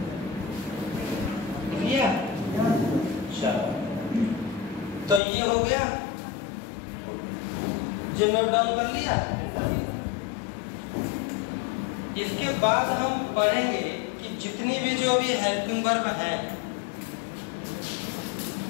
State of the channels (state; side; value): drops out; right; at 5.2 s